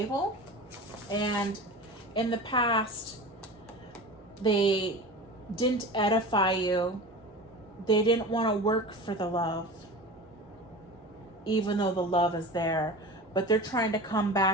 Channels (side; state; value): both; normal; correlation 0.33